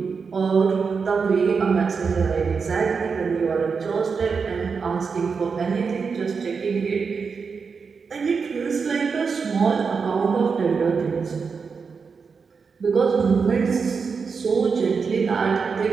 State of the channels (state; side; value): quieter; left; 5.4 dB